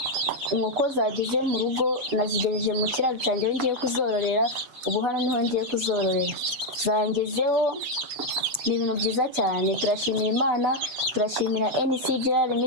inkoko zageze mu rugo nazigejeje mu kiraro cyanjye aho ngiye kuzororera. Ubu hano niho ngiye kuzororera, zangezeho. Ni ibintu byiza cyane, turashimira Imana, turashimira NCGR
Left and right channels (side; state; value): left; late; 8.0 ms